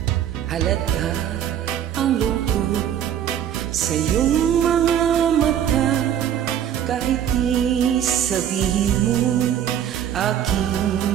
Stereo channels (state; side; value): quieter; left; 9.9 dB